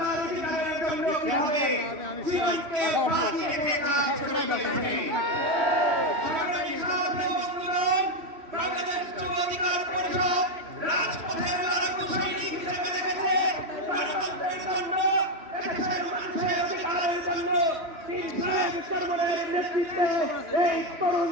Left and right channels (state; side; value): late; left; 3.2 ms